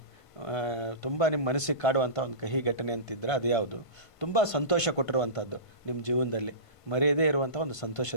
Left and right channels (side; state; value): right; late; 1.5 ms